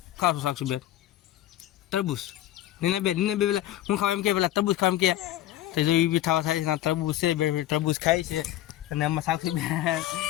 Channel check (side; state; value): right; quieter; 13.7 dB